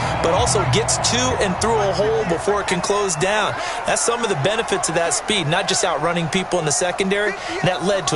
but also gets to and through a hole before it can close down. That's some of the benefits of that speed, not just outrunning people in the secondary, and that led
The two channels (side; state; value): both; identical; correlation 1.00